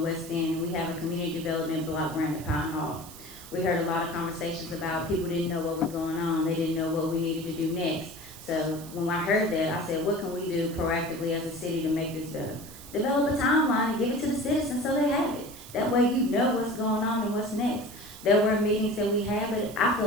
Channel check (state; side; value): noise; right; hiss, 16 dB below the sound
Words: End, and we have a community development block grant at Pine Hall. We heard a lot of conversations about people didn't know what was going on, they didn't know what we needed to do next. So when I heard that, I said, what can we do proactively as a city to make this better? Develop a timeline and give it to the citizens so they have it. That way you know what's going on and what's next. There were meetings that we had, but I feel